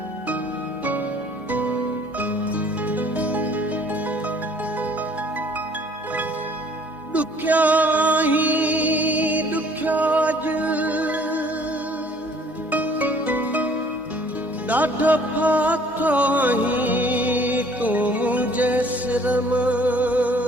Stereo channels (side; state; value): both; normal; correlation 0.56